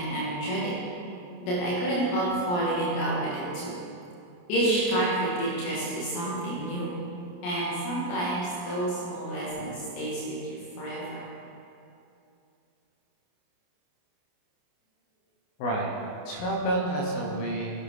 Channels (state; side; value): late; right; 28 ms